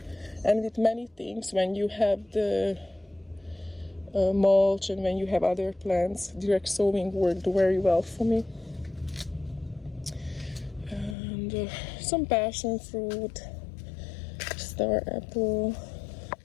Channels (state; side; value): drops out; right; at 11.2 s